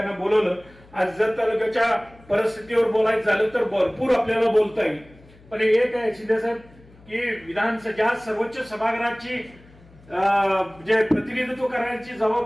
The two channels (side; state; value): left; noise; hum, 25 dB below the sound